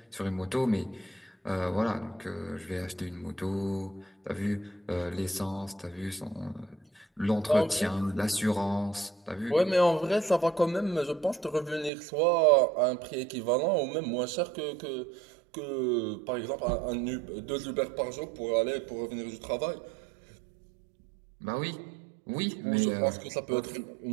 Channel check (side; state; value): left; drops out; at 11.9 s